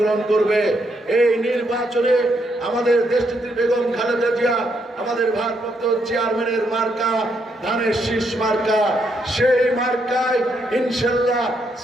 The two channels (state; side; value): normal; both; correlation 0.77